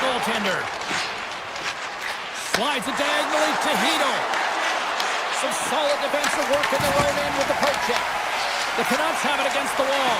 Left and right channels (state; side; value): identical; both; correlation 1.00